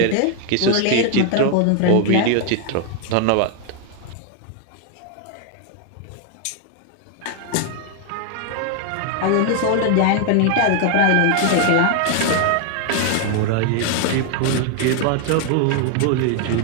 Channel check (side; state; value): both; different; correlation 0.00